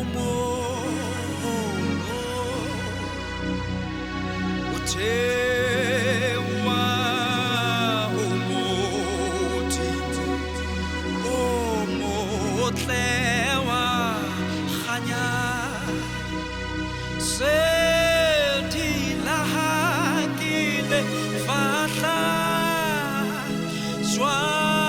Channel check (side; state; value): both; identical; correlation 1.00